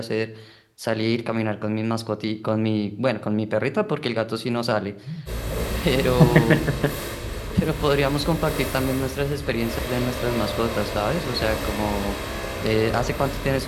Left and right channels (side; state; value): both; identical; correlation 1.00